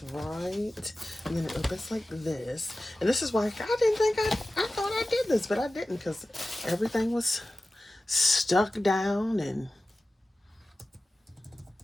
right? And then it opens like this. And this is why I didn't think I thought I did this, but I didn't because everything was stuck down and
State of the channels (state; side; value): normal; both; correlation 0.96